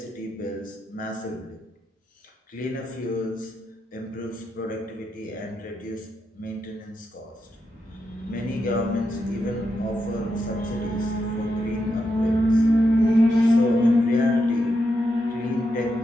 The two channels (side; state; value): both; normal; correlation 0.84